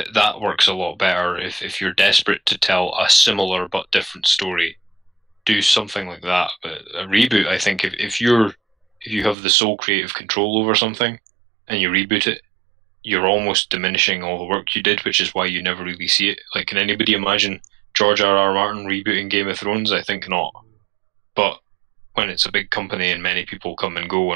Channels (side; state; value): left; drops out; at 9.3 s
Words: works a lot better if you're desperate to tell a similar but different story. Do something like that. But a reboot, I think, if you have the sole creative control over something and you reboot it, you're almost diminishing all the work you did, which is why you never really see it. Like, can anybody imagine George R.R. Martin rebooting Game of Thrones? I think not. But when it's a big company and many people come and go